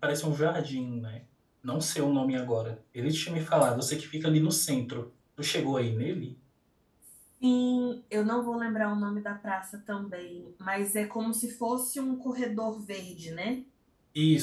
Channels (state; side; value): identical; both; correlation 1.00